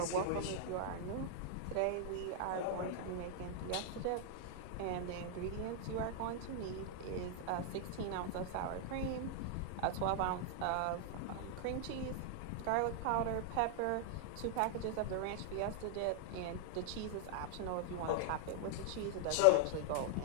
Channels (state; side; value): different; both; correlation 0.00